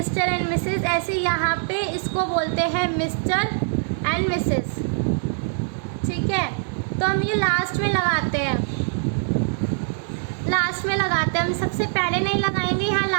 एंड मिसेस, ऐसे यहाँ पे इसको बोलते हैं मिस्टर एंड मिसेस। ठीक है, तो हम ये लास्ट में लगाते हैं, हम सबसे पहले नहीं लगाएंगे, यहाँ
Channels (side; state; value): left; silent; digital silence